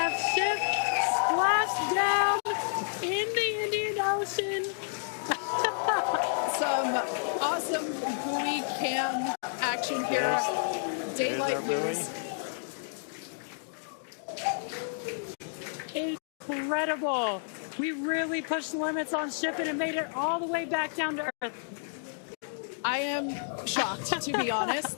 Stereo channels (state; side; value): silent; right; digital silence